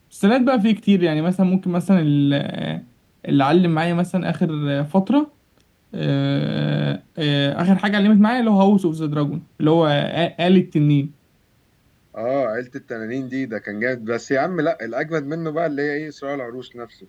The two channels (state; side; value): identical; both; correlation 1.00